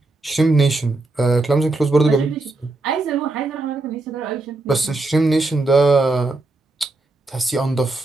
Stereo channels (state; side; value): quieter; left; 3.1 dB